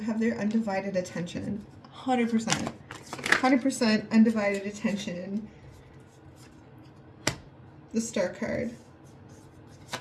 their undivided attention. 100%. 100% undivided attention. The Star card.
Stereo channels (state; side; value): identical; both; correlation 1.00